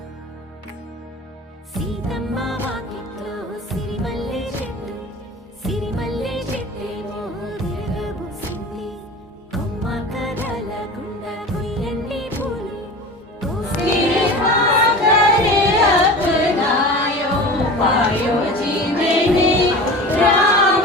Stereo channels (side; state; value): both; normal; correlation 0.35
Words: సీతమ్మ వాకిట్లో సిరిమల్లె చెట్టు, సిరిమల్లె చెట్టేమో తిరగబూసింది. కొమ్మ కదలకుండా కొయ్యండి పూలు,